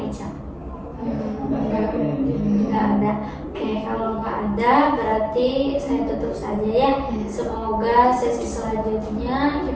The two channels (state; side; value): identical; both; correlation 1.00